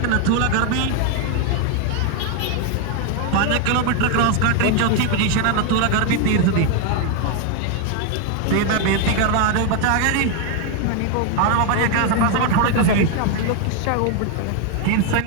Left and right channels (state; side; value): different; both; correlation 0.01